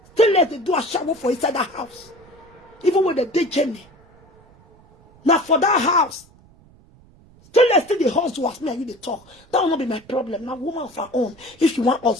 Still less they do a shower for inside that house. Even with the day journey. Now for that house, Still let's still the hustle as me and you they talk. That will not be my problem. Now, woman of her own, if you want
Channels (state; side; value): noise; right; rumble, 27 dB below the sound